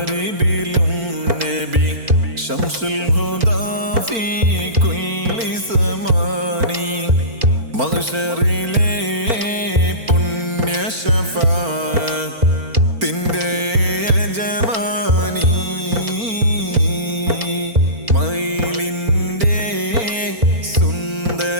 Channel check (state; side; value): late; left; 4.4 ms